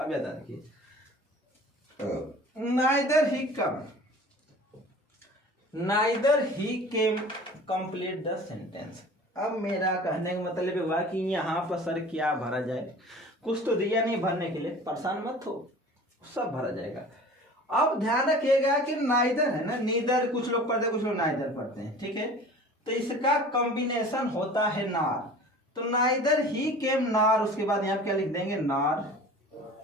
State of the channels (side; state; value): both; normal; correlation 0.42